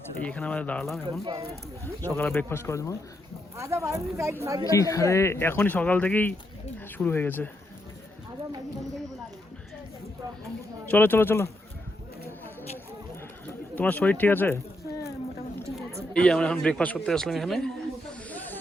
এখানে আমরা দাঁড়ালাম এখন সকালে ব্রেকফাস্ট করার জন্য। আরে এখনই সকাল থেকেই শুরু হয়ে গেছে। চলো চলো চলো, তোমার শরীর ঠিক আছে? এই আমরা এখন ব্রেকফাস্ট করতে আসলাম। এখানে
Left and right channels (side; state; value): both; normal; correlation 0.80